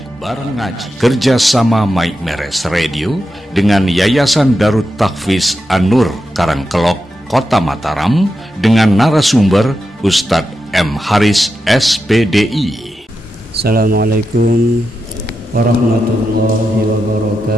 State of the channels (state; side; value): normal; both; correlation 0.88